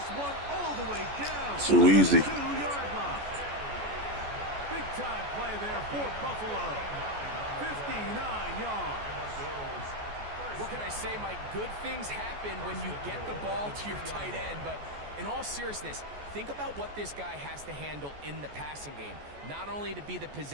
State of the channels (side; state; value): left; late; 14 ms